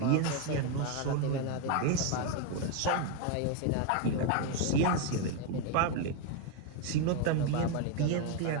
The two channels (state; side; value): different; both; correlation 0.02